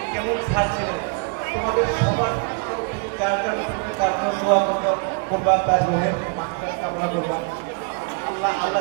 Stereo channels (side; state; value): left; quieter; 35.7 dB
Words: কেমন স্যার ছিলেন। তোমাদের সবার তরফ থেকে যার জন্য তার জন্য দোয়া করবা, তার গ্রহের মাত্রা কামনা করবা। আল্লাহ